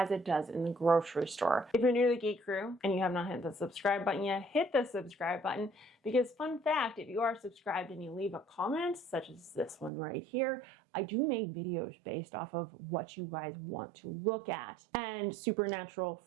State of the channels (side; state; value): left; drops out; at 9.9 s